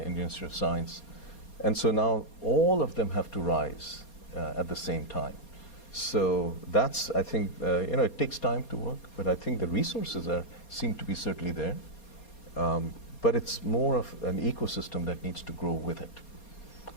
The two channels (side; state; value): right; late; 4.3 ms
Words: Institute of Science. And so now all of them have to rise at the same time. So that's, I think, it takes time to work, but I think the resources seem to be certainly there. But it's more of an ecosystem that needs to grow with it.